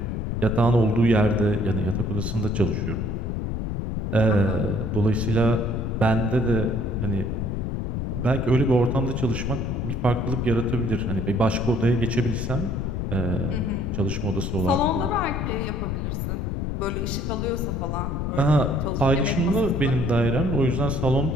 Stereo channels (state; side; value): noise; left; rumble, 2 dB below the sound